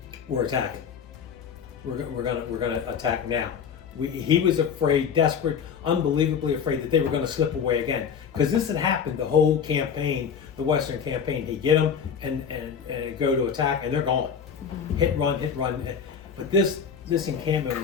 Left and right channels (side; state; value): right; quieter; 7.1 dB